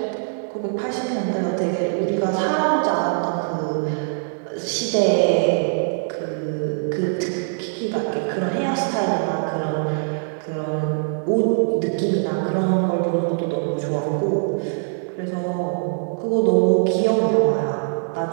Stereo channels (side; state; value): left; silent; digital silence